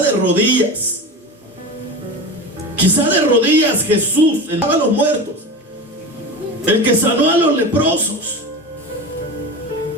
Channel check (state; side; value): normal; both; correlation 0.29